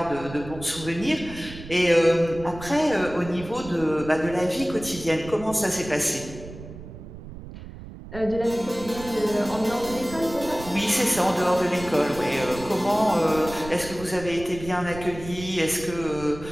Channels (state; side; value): noise; right; rumble, 14 dB below the sound